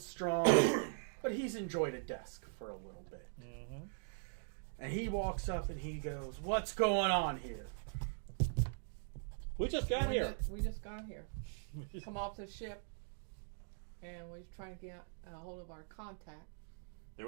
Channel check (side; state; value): left; silent; digital silence